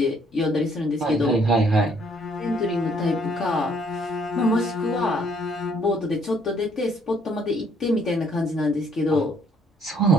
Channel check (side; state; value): both; normal; correlation 0.65